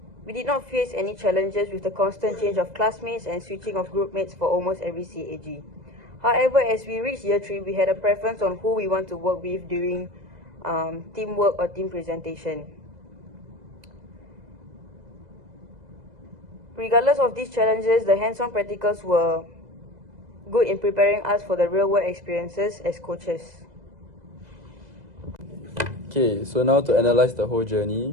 we did not face any challenges with the constant change of classmates and switching of group mates for almost every CAG. However, as we reached year 3, we had a preference on who we want to work with during teamwork or team presentation. Regardless of these challenges, the hands-on practicals were good in preparing us for the real-world experiences as coaches. Okay, so now to analyze the whole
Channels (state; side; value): late; left; 2.0 ms